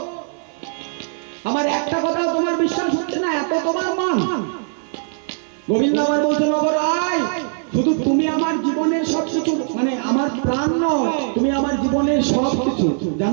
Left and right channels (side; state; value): left; silent; digital silence